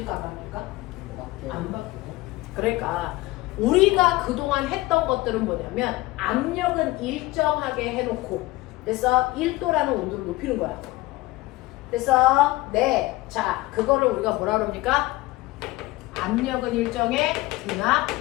안 바뀔까? 안 바뀌어. 그러니까 우리가 그동안 했던 것들은 뭐냐면 압력은 일정하게 해놓고 그래서 1도라는 온도를 높이는 거야. 그래서 네. 자, 그거를 우리가 뭐라 그럽니까? 압력은 일정해, 등압,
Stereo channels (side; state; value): right; quieter; 19.7 dB